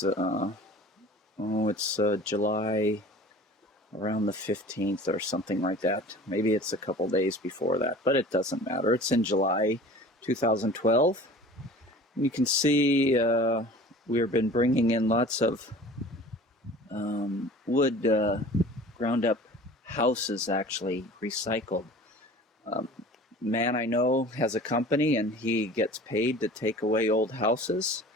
July around the 15th or something like that. Maybe it's a couple days before that, but it doesn't matter. It's in July 2012. And you can see we've been bringing in lots of wood, ground up houses, actually recycled. Man I know has a company, and he gets paid to take away old houses,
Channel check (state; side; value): normal; both; correlation 0.43